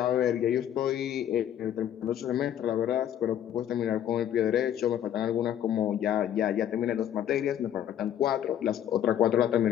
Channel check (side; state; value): right; quieter; 10.5 dB